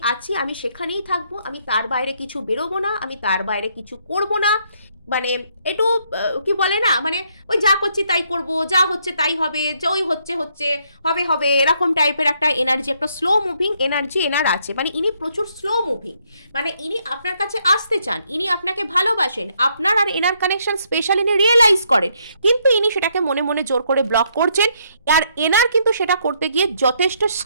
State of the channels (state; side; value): inverted; both; correlation -0.72